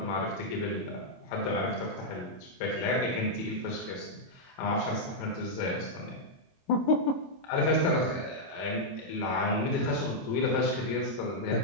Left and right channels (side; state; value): right; late; 22 ms